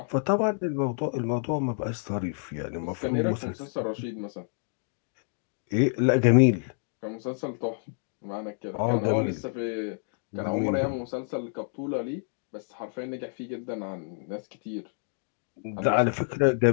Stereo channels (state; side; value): silent; right; 59 dB below the other